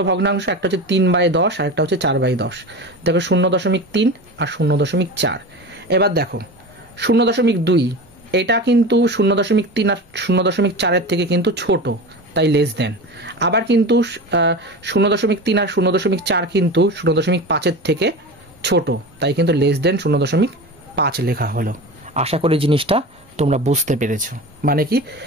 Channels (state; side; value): normal; both; correlation 0.29